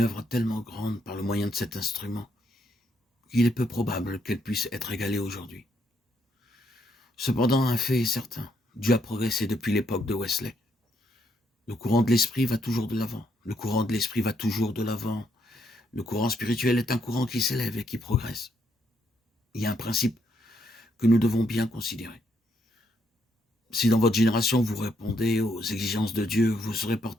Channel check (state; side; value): normal; both; correlation 0.74